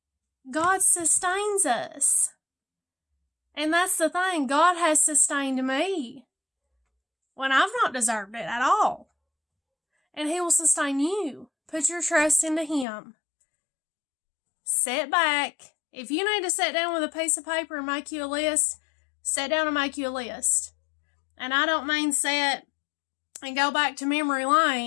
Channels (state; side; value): drops out; right; at 12.9 s